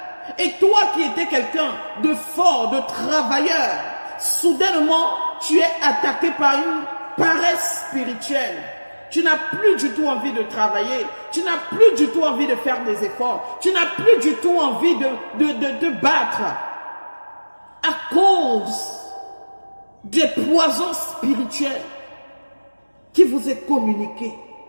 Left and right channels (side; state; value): both; inverted; correlation -1.00